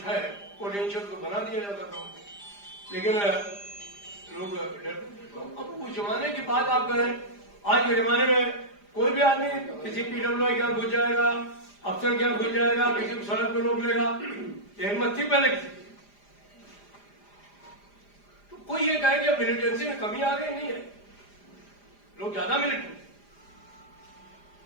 है, पोटेंशियल तो बना दिया जाता था, लेकिन लोग डरते। तो अब उस जमाने की बात आप करें, आज के जमाने में कोई भी आदमी किसी PWI क्या घुस जाएगा, अफसर क्या घुस जाएगा, किसी को सड़क पर रोक लेगा, हिम्मत थी पहले की। तो कोई ये कहे कि मिलिटेंसी में कमी आ गई, नहीं है, लोग ज्यादा मिलिटेंट।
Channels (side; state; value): right; late; 5.0 ms